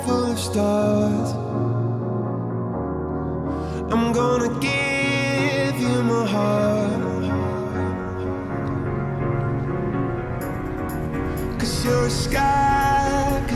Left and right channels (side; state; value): both; identical; correlation 1.00